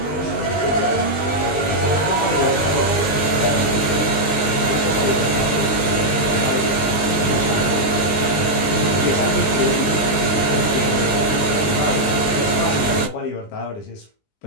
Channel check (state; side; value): late; right; 20 ms